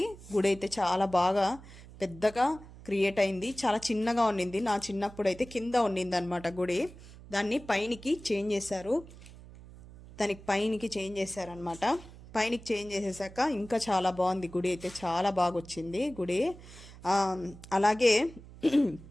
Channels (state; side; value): noise; right; hum, 18 dB below the sound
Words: గుడి అయితే చాలా బాగా పెద్దగా క్రియేట్ అయింది. చాలా చిన్నగా ఉండింది, నా చిన్నప్పుడు అయితే కింద ఉండింది అనమాట గుడి. దాన్ని పైనికి చేంజ్ చేశారు, పైనికి చేంజ్ చేసేసాక ఇంకా చాలా బాగుంది గుడి అయితే. చాలా బాగా వచ్చింది గుడి. అలాగే